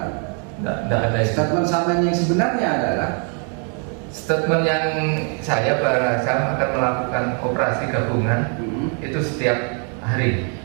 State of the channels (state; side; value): quieter; left; 39.6 dB